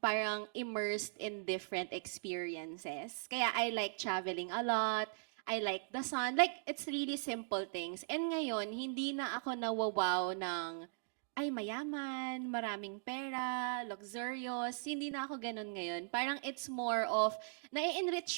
parang immersed in different experiences. Kaya I like traveling a lot. I like the sun. Like, it's really simple things. And ngayon, hindi na ako nawawaw ng, ay, mayaman, maraming pera, luxurious. Hindi na ako ganun ngayon. Parang it's more of,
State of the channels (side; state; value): left; silent; digital silence